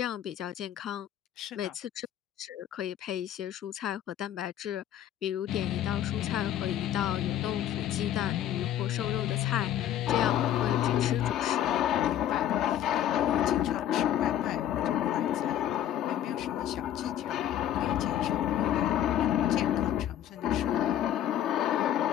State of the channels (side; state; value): right; quieter; 11.1 dB